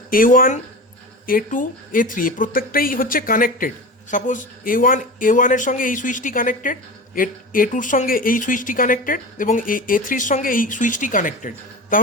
A1 A2 A3 প্রত্যেকটাই হচ্ছে কানেক্টেড, সাপোজ A1 এর সঙ্গে এই সুইচটি কানেক্টেড, A2 এর সঙ্গে এই সুইচটি কানেক্টেড এবং A3 এর সঙ্গে এই সুইচটি কানেক্টেড,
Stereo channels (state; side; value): normal; both; correlation 0.30